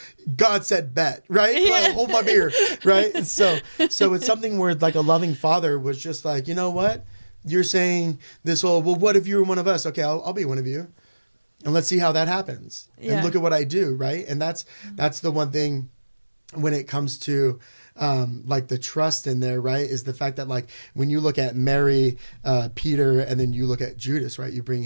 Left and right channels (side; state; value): both; inverted; correlation -1.00